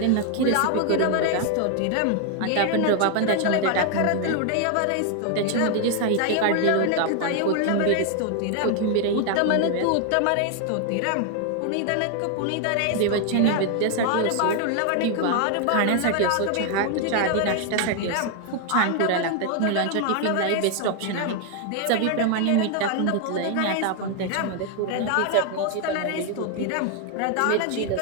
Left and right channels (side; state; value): both; different; correlation 0.00